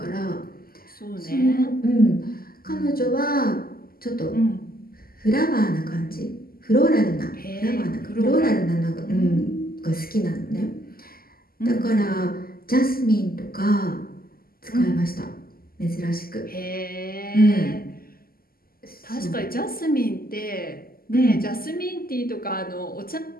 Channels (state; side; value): late; right; 0.43 ms